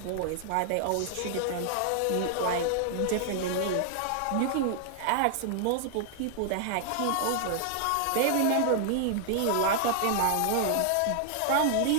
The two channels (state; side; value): different; both; correlation 0.00